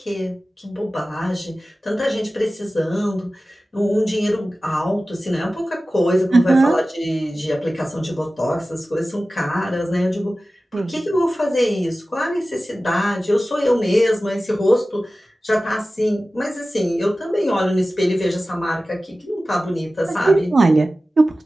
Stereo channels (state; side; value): normal; both; correlation 0.96